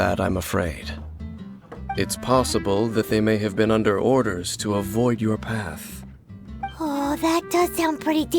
I'm afraid. It's possible that they may have been under orders to avoid your path. Oh, that does sound pretty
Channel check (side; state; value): both; identical; correlation 1.00